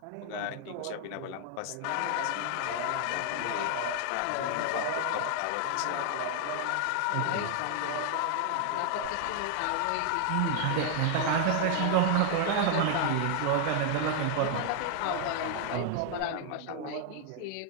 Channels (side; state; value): both; different; correlation 0.00